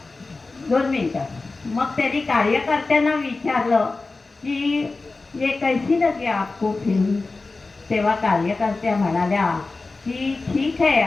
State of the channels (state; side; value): quieter; right; 3.6 dB